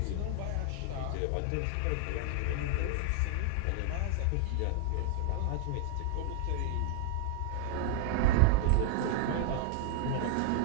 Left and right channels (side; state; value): both; different; correlation 0.00